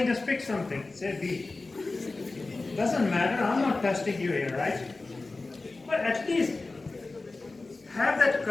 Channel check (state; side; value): quieter; right; 3.4 dB